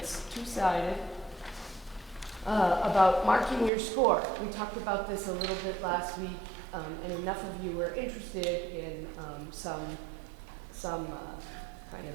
two-sided. About marking your score. We talked about this a little bit last week, and enough of you were interested in some kind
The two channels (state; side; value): drops out; left; at 3.7 s